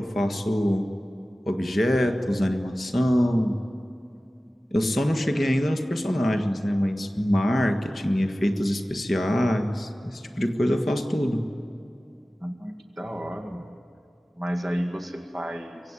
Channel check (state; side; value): normal; both; correlation 0.96